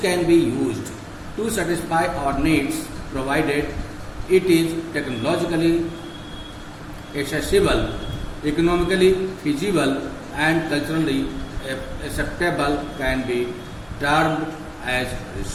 can be used to satisfy our needs provided it is technologically accessible, economically feasible and culturally acceptable can be termed as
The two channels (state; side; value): identical; both; correlation 1.00